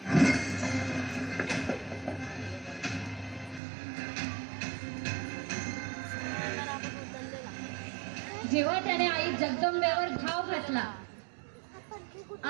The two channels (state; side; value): drops out; left; at 3.6 s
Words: जेव्हा त्याने आई जगदंबेवर घाव घातला,